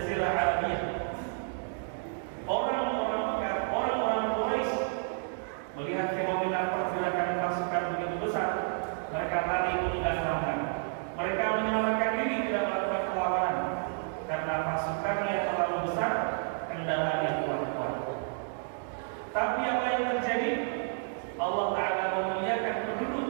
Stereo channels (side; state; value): left; silent; 57 dB below the other